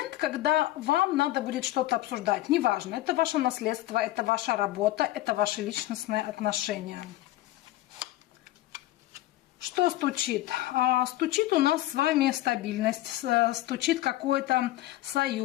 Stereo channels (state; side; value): quieter; right; 16.1 dB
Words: когда вам надо будет что-то обсуждать. Неважно, это ваше наследство, это ваша работа, это ваши личностные отношения. Что стучит? Стучит у нас с вами стабильность, стучит какой-то